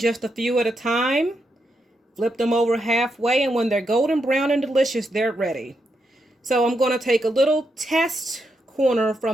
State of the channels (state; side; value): normal; both; correlation 0.82